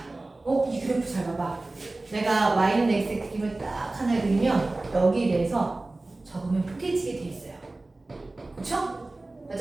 이 그래프 잘 봐봐. 내가 y는 x의 그림을 딱 하나 그리면 여기에 대해서 적으면 포개지게 돼 있어요. 그쵸?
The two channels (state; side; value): quieter; left; 3.0 dB